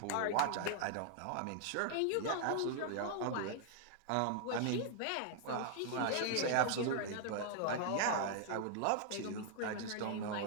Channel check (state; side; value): different; both; correlation -0.01